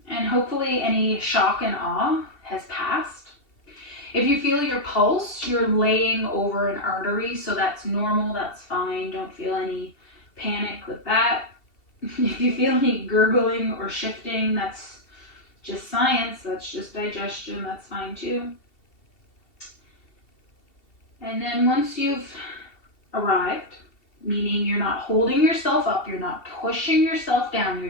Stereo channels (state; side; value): late; right; 2.7 ms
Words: and hopefully any shock and awe has passed. If you feel your pulse, you're laying over an artery, so that's normal, that's fine. Don't feel any panic with that. If you feel any gurgling or shifting, that's just science, that's just digestion, that's fine too. And then once you've arrived, meaning you're not holding yourself up, you're not pushing yourself down,